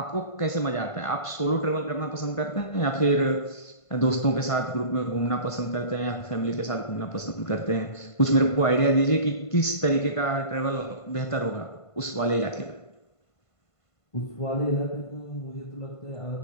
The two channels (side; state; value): right; late; 1.5 ms